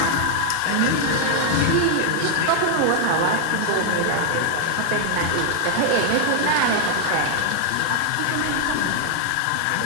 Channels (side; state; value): both; different; correlation 0.00